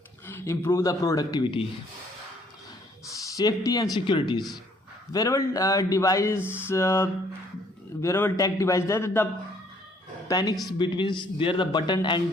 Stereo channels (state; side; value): normal; both; correlation 0.63